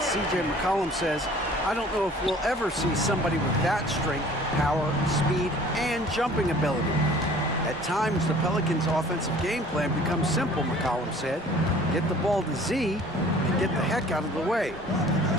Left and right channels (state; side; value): normal; both; correlation 0.50